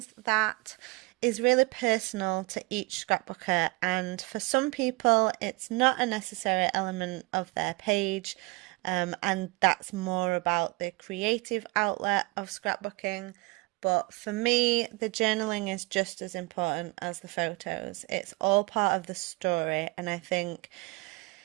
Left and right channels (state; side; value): quieter; left; 24.9 dB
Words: that is really personal to each scrapbooker, and for some people, it's not a necessary element of their page, and that's more about the creative outlet of scrapbooking. But for me, the journaling is just as important as the photos. It's all part of the story. And I think